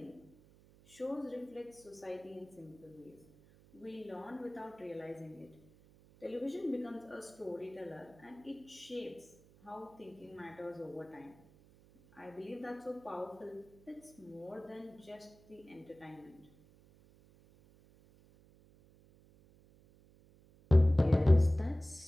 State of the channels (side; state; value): right; noise; hum, 26 dB below the sound